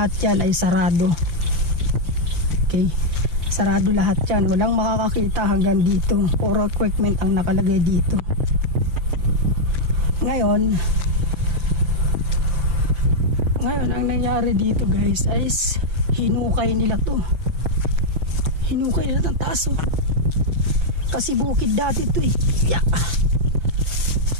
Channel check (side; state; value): left; late; 5.9 ms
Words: yan ay sarado. Okay, sarado lahat yan, walang makakakita hanggang dito, puro equipment ang nakalagay dito. Ngayon ang nangyari dito guys ay hinukay nila to, hinukay nila ng taas oh. Kasi bukid dati to eh, yeah.